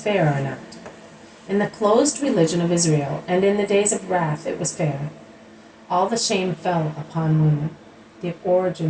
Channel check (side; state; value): both; identical; correlation 1.00